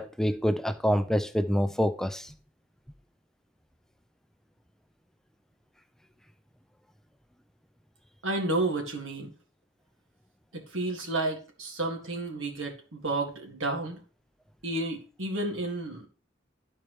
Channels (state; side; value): normal; both; correlation 0.52